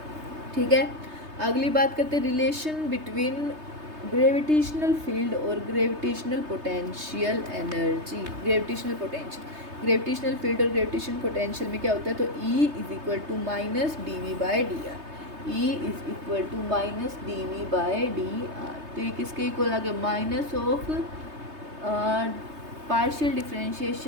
ठीक है, अगली बात करते हैं रिलेशन बिटवीन ग्रेविटेशनल फील्ड और gravitational potential energy. Gravitational field और ग्रेविटेशन पोटेंशियल में क्या होता है, तो E is equal to minus D V by D R, E is equal to minus D V by D R. तो ये किसके इक्वल आ गया, minus of partial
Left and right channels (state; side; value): late; left; 3.3 ms